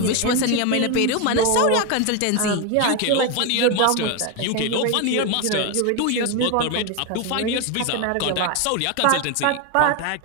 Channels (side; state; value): both; different; correlation 0.02